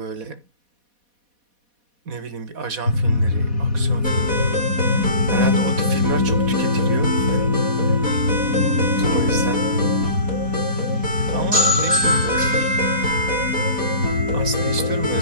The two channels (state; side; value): late; left; 4.1 ms